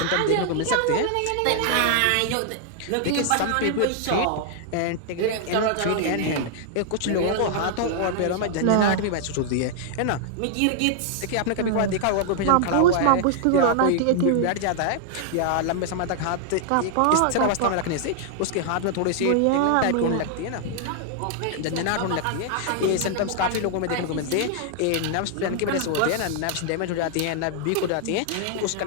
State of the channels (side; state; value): both; different; correlation 0.00